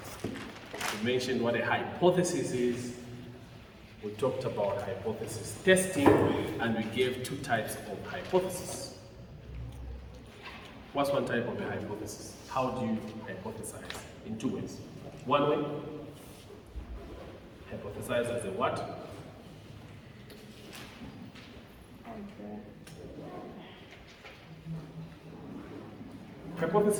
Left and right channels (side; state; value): both; identical; correlation 1.00